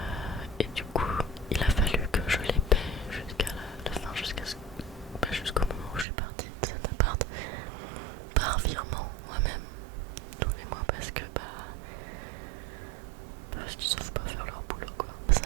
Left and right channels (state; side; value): drops out; left; at 6.1 s